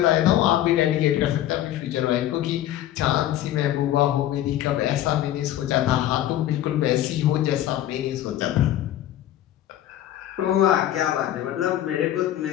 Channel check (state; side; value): quieter; right; 12.8 dB